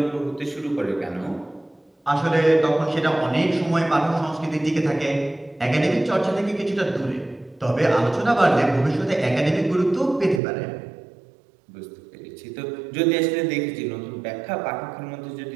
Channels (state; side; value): drops out; left; at 10.4 s